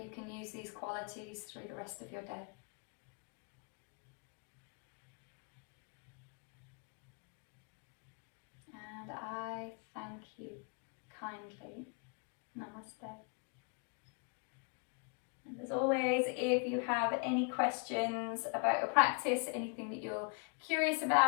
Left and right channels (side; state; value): right; quieter; 39.2 dB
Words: can use these qualities through the rest of your day. And I thank you kindly. Namaste. And as always, if you have any questions about your practice, anything that you're curious